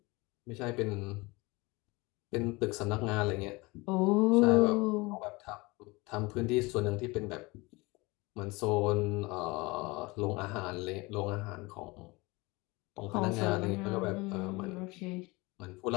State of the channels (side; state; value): right; quieter; 24.2 dB